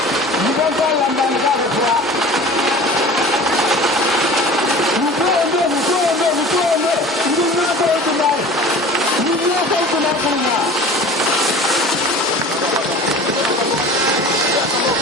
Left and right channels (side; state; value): both; normal; correlation 0.40